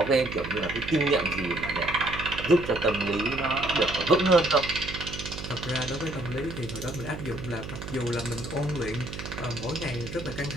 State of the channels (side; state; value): right; noise; hum, 9 dB below the sound